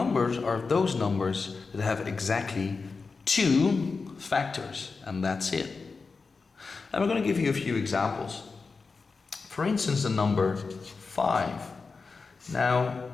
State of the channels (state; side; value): quieter; right; 4.5 dB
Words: are those numbers that have exactly 2 factors, and that's it. And we're going to give you a few examples. For instance, the number 5. Now,